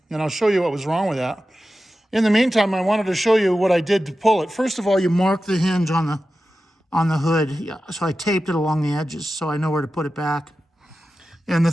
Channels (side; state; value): both; normal; correlation 0.93